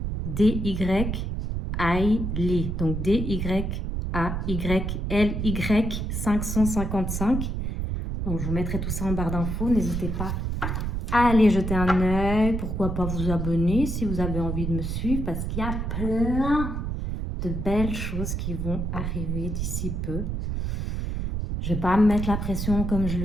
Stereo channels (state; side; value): noise; right; rumble, 2 dB below the sound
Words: Donc, D-Y-A-Y-L-Y 555. Donc, je vous mettrai tout ça en barre d'infos. N'hésitez pas à aller jeter un œil. Pourquoi pas vous abonner si vous avez envie de me suivre. Parce qu'il y a plein de belles choses qui vont arriver d'ici peu. Je ne vais pas me mettre la pression comme je